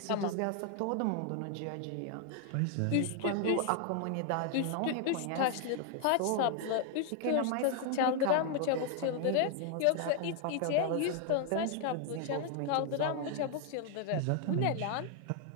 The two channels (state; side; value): different; both; correlation 0.00